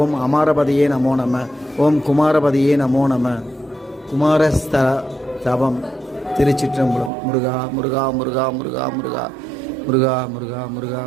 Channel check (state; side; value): drops out; left; at 7.1 s